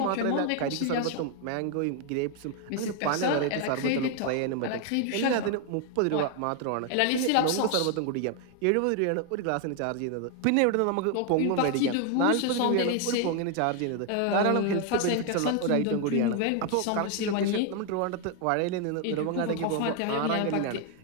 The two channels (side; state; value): both; different; correlation 0.00